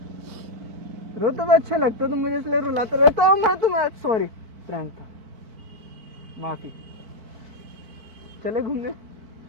रोते हुए अच्छे लगते हो तुम मुझे, इसलिए रुलाते रहता हूँ मैं तुम्हें। सॉरी, प्रैंक था, माफी। चले घूमने?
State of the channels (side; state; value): left; late; 4.5 ms